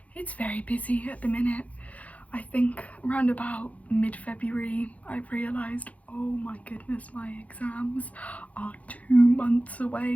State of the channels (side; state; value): right; late; 0.068 ms